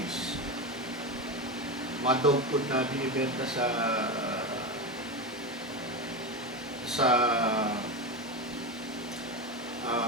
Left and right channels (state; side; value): normal; both; correlation 0.18